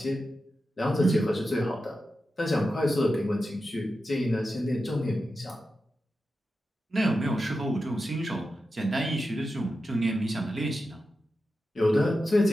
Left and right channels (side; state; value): both; normal; correlation 0.91